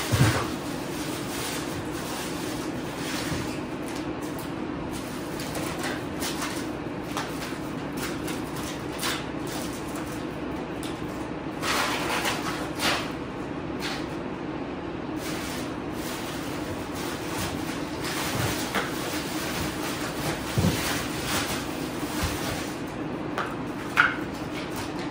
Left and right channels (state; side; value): identical; both; correlation 1.00